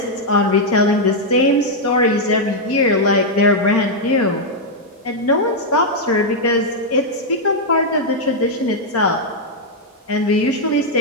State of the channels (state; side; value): normal; both; correlation -0.02